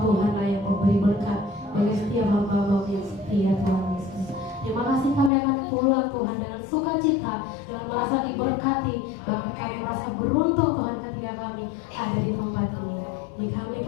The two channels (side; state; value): right; drops out; at 5.3 s